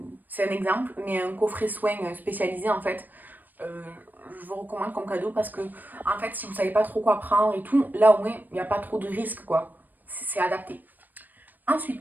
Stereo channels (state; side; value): late; left; 0.088 ms